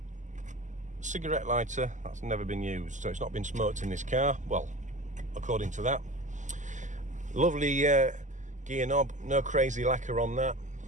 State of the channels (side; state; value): left; late; 0.36 ms